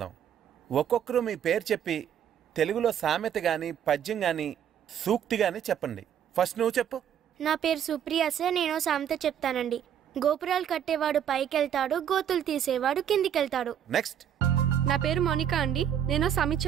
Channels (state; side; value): quieter; left; 9.3 dB